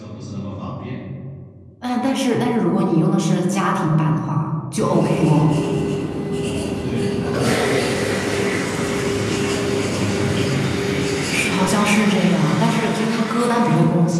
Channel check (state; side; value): identical; both; correlation 1.00